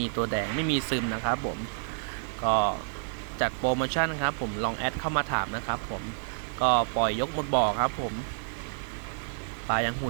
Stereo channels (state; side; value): silent; left; digital silence